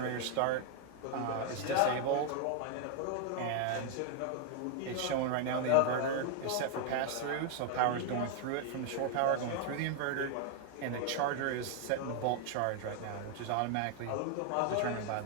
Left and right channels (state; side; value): different; both; correlation 0.00